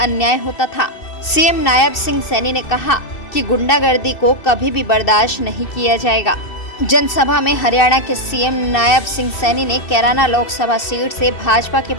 अन्याय होता था। सीएम नायब सिंह सैनी ने कहा कि गुंडागर्दी को कभी भी बर्दाश्त नहीं किया जाएगा। जनसभा में हरियाणा के सीएम नायब सिंह सैनी ने कैराना लोकसभा सीट से भाजपा के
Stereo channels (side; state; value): right; late; 2.6 ms